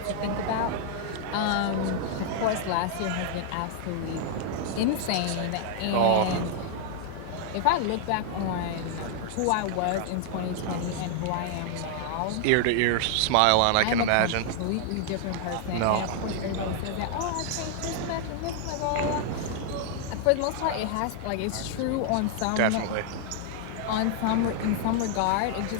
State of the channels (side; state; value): both; different; correlation 0.00